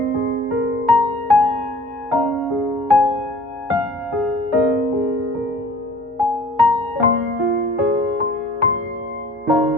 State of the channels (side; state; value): left; noise; hum, 29 dB below the sound